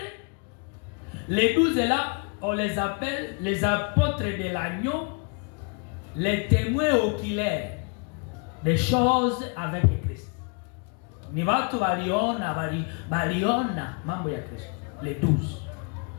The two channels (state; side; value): quieter; right; 36.5 dB